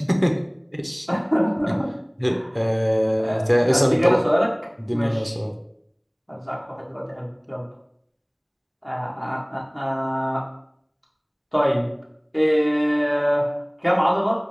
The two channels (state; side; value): identical; both; correlation 1.00